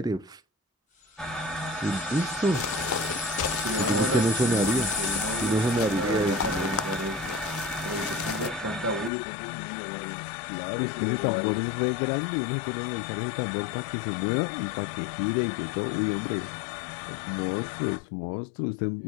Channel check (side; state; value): right; drops out; at 9.1 s